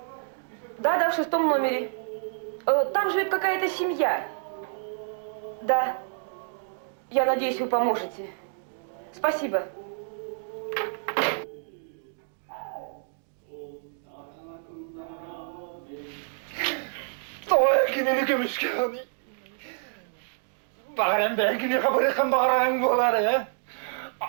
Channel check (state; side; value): silent; left; digital silence